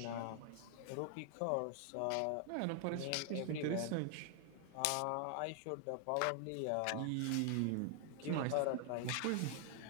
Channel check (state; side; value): different; both; correlation 0.00